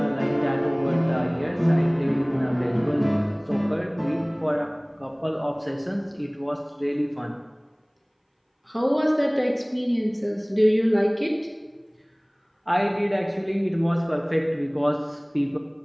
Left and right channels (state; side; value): identical; both; correlation 1.00